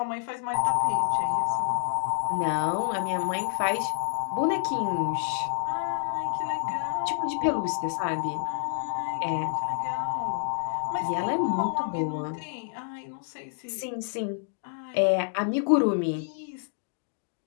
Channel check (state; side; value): silent; right; digital silence